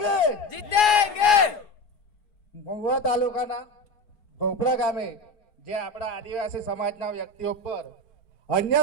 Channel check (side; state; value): right; late; 4.8 ms